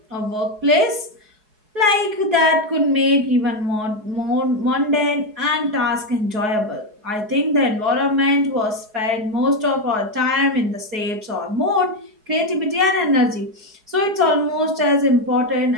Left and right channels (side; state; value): left; late; 4.7 ms